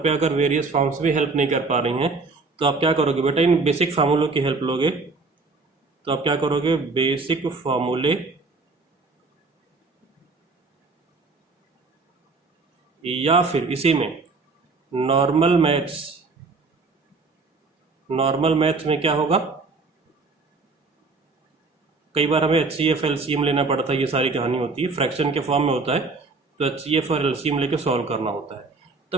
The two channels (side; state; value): left; quieter; 3.9 dB